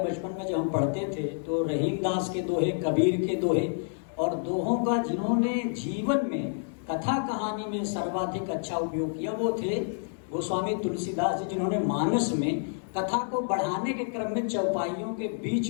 में जब हम पढ़ते थे तो रहीम दास के दोहे, कबीर के दोहे, और दोहों का जिन्होंने जीवन में कथा कहानी में सर्वाधिक अच्छा उपयोग किया वो थे गोस्वामी तुलसीदास जी, जिन्होंने मानस में कथा को बढ़ाने के क्रम में चौपाइयों के बीच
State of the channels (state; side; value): silent; right; digital silence